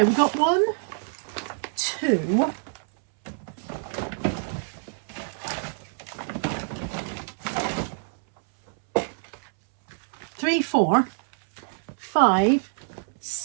we've got 1, 2, 3, 4, 5,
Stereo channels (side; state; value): left; silent; 61 dB below the other